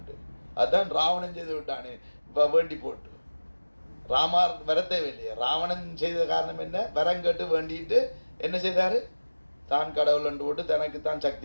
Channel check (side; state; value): both; inverted; correlation -1.00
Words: அதுதான் ராவணன் செய்து விட்டானே இப்போ வேண்டி போட்டு ராமார் வரத்தேவை இல்லையா. ராவணன் செய்த காரணம் என்ன, வரம் கேட்டு வேண்டிட்டு என்ன செய்தார், தான் கடவுள் அண்டு போட்டு தனக்கு தான்